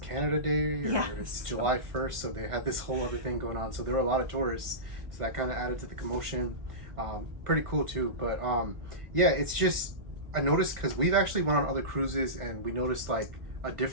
Day, or it's July 1st, so they had this whole other thing going on. So there were a lot of tourists, so that kind of added to the commotion. Pretty cool too, but yeah, it's just, I noticed, because we've actually went on other cruises and we noticed like a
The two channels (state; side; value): late; left; 1.5 ms